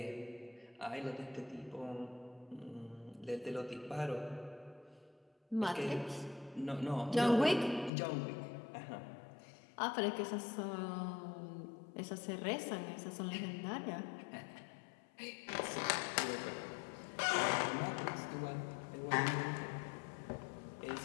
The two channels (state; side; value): drops out; right; at 7.9 s